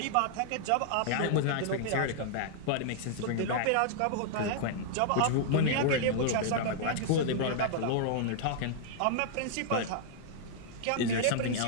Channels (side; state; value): both; different; correlation -0.01